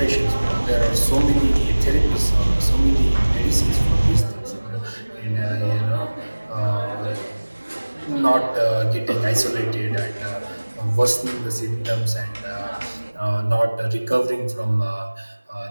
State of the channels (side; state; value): both; inverted; correlation -1.00